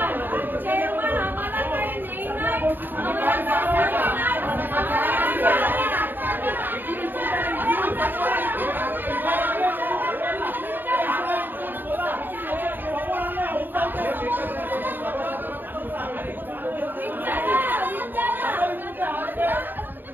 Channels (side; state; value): left; late; 0.092 ms